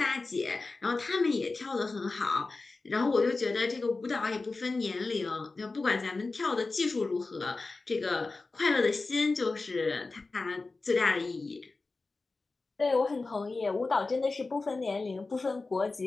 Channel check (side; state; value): right; quieter; 3.7 dB